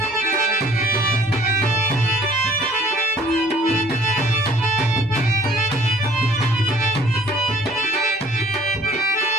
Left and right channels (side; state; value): both; normal; correlation 0.56